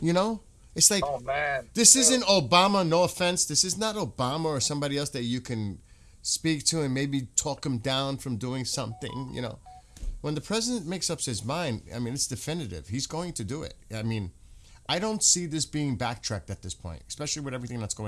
know? It's like, Oh man, this isn't Obama, no offense. This is not Obama or somebody else that you can speak to and maybe talk him down from doing something, you know. When the president makes up his mind, I mean, it's definitive. He's going to do it. I mean, I don't see this being backtracked at this point, especially with everything that's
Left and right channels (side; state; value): both; identical; correlation 1.00